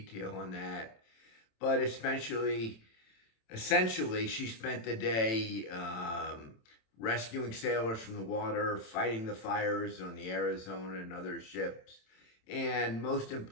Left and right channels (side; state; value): right; late; 27 ms